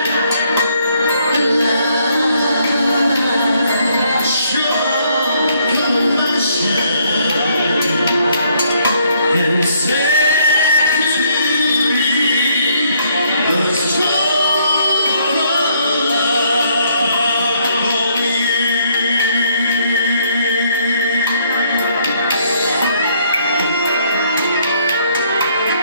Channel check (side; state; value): both; inverted; correlation -0.69